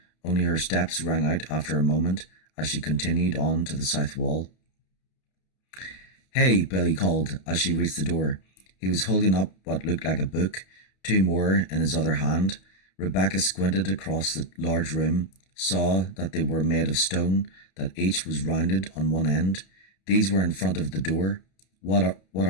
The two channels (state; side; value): late; right; 31 ms